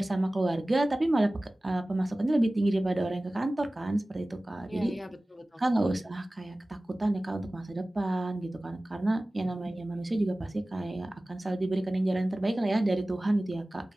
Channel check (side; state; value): both; normal; correlation 0.97